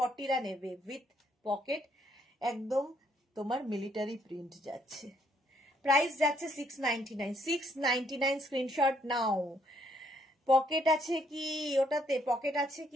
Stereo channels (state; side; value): normal; both; correlation 0.70